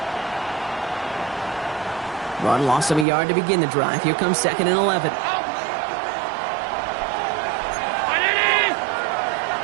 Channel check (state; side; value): drops out; left; at 3.1 s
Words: Rod lost him a yard to begin the drive. Here comes 2nd and 11.